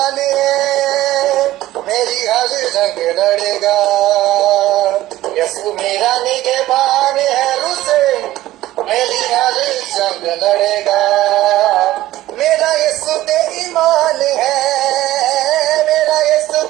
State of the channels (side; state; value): left; quieter; 15.6 dB